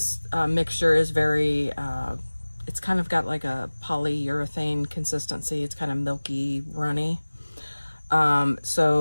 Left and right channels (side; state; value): both; inverted; correlation -1.00